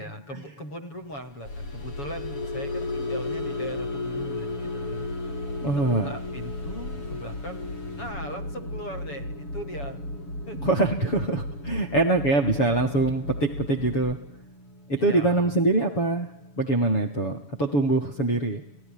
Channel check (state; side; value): late; right; 7.1 ms